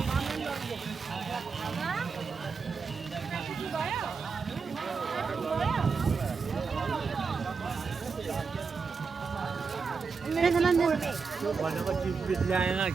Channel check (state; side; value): quieter; left; 5.2 dB